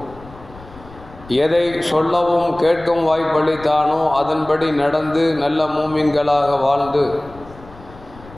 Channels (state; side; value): noise; left; rumble, 20 dB below the sound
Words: எதை சொல்லவும் கேட்கும் வாய்ப்பளித்தானோ அதன்படி நடந்து நல்ல மூமின்களாக வாழ்ந்து